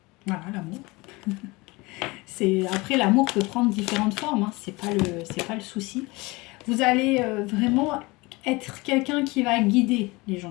l'amour. Après, l'amour peut prendre différentes formes, hein. C'est pas le souci. Vous allez vraiment être quelqu'un qui va guider les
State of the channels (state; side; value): quieter; right; 23.6 dB